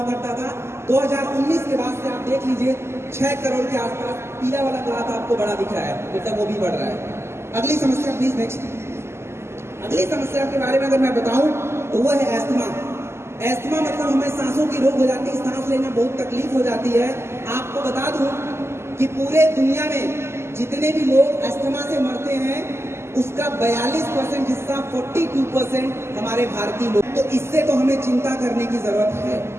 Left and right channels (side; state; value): left; late; 0.12 ms